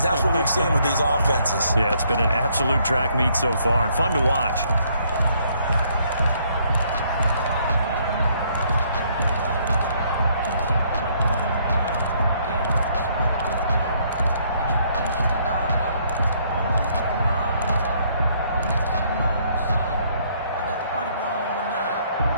That's what we've seen with these offenses. Yeah, it's been an absolute track meet so far, and fun to watch.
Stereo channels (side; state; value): both; inverted; correlation -0.67